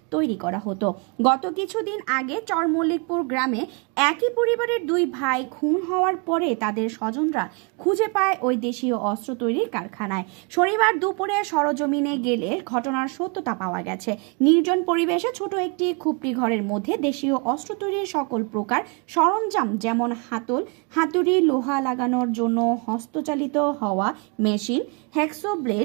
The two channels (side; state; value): left; quieter; 33.5 dB